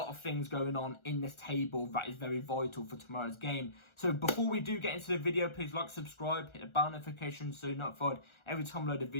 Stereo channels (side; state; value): right; late; 1.4 ms